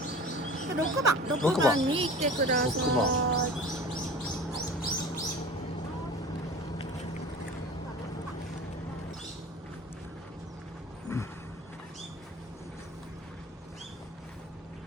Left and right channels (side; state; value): both; normal; correlation 0.38